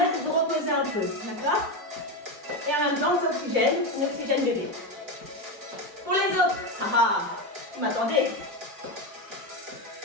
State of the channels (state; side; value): late; left; 4.6 ms